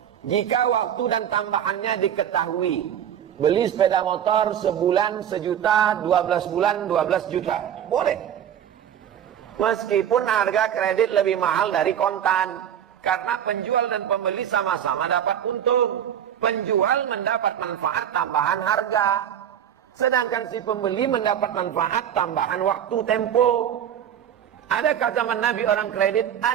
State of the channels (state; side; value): quieter; left; 9.7 dB